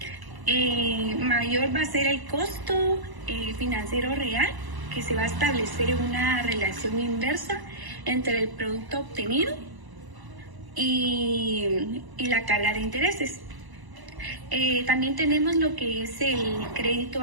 mayor va a ser el costo financiero real, que se va a establecer una relación inversa entre el producto obtenido y la carga de intereses. También tenemos lo que es el crédito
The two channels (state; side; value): late; left; 1.0 ms